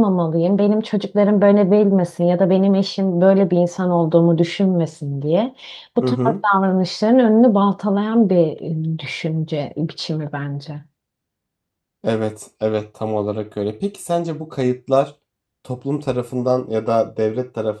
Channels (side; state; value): both; identical; correlation 1.00